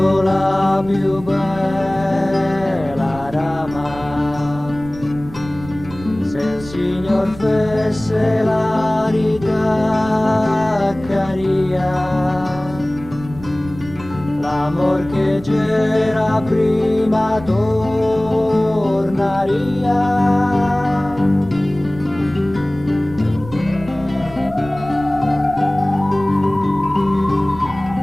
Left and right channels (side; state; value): right; noise; rumble, 16 dB below the sound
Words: la più bella rama, se il Signor fesse la ritaccaria, l'amor che c'era prima tornaria.